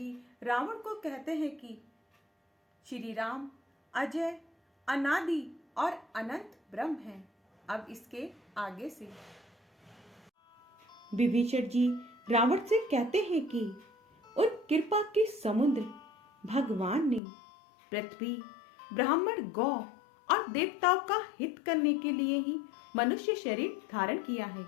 रावण को कहते हैं कि श्री राम अजय, अनादि और अनंत ब्रह्म हैं। अब इसके आगे से विभीषण जी रावण से कहते हैं कि उन कृपा के समुद्र भगवान ने पृथ्वी, ब्राह्मण, गौ और देवताओं का हित करने के लिए ही मनुष्य शरीर धारण किया है।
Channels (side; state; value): right; drops out; at 17.2 s